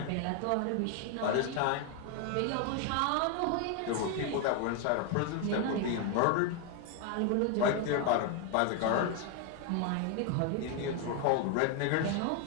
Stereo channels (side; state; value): both; different; correlation 0.01